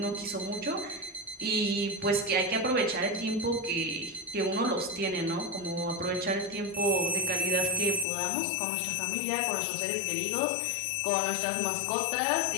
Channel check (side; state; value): right; drops out; at 8.1 s